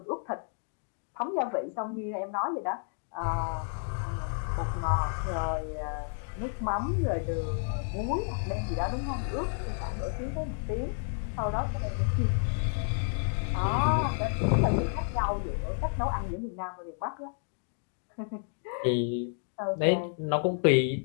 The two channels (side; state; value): right; silent; 57 dB below the other